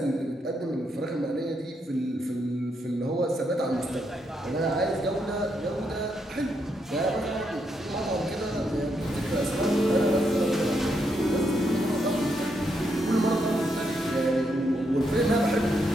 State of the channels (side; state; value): both; normal; correlation 0.79